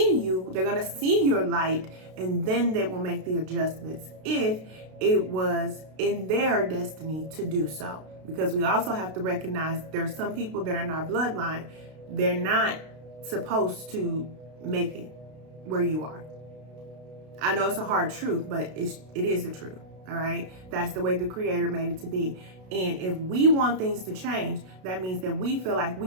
you. They're going to see your light, and then they will make the adjustments if it was in their destiny to do so. Because we also have to recognize there are some people that are in our bloodline. They're not supposed to make it where you are. I know it's a hard truth, but it is the truth. All right. That's the way the Creator made it to be. And if we want things to change, that means that we feel like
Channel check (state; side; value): late; left; 32 ms